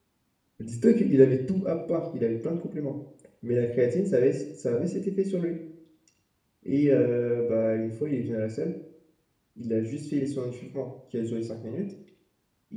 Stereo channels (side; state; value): both; identical; correlation 1.00